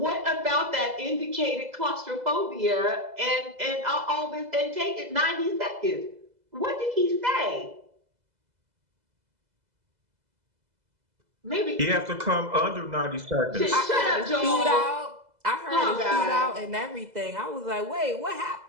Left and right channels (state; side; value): late; left; 2.0 ms